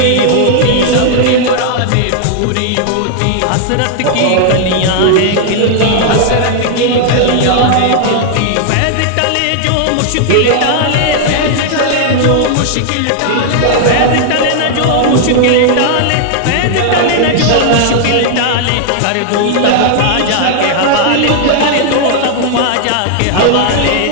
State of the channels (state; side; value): different; both; correlation 0.00